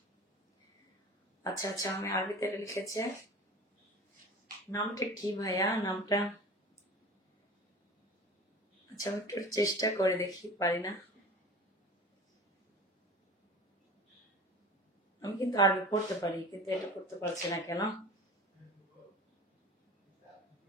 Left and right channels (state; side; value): normal; both; correlation 0.37